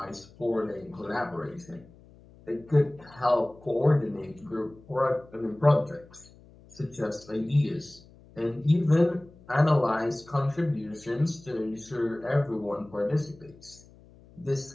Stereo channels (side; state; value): left; noise; hum, 24 dB below the sound